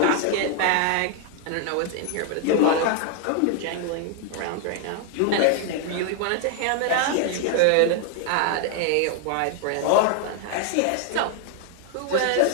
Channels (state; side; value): different; both; correlation 0.01